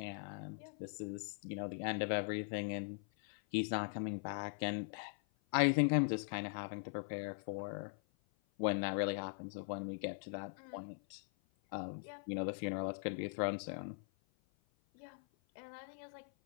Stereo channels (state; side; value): silent; right; 50 dB below the other